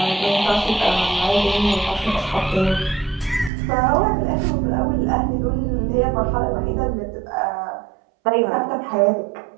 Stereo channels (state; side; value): drops out; left; at 3.5 s